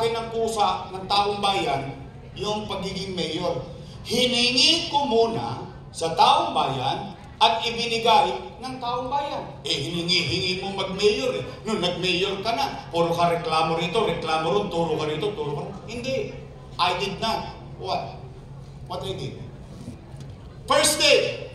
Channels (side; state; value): both; identical; correlation 1.00